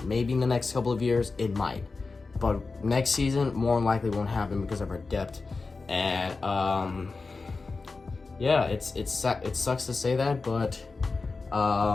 Maybe in the next couple of years, it might. But next season, more than likely won't happen because of our depth And yeah, it sucks to say that, but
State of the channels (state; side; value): quieter; right; 4.0 dB